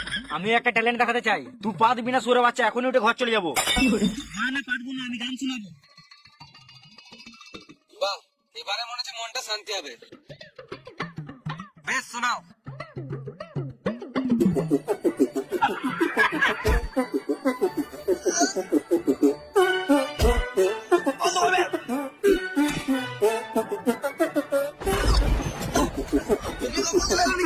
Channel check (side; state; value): both; identical; correlation 1.00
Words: আমি একটা ট্যালেন্ট দেখাতে চাই। তুই পা দিবি না সুরে বাচ্চা, এখনই উঠে ঘর চলে যাবো। না না পারবো না, আমি গান শোনাবো। বাহ, এবারে মনে হচ্ছে মনটা শান্তি হবে। বেশ, শোনাও।